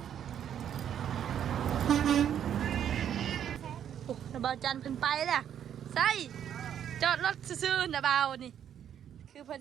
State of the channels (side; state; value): left; quieter; 9.5 dB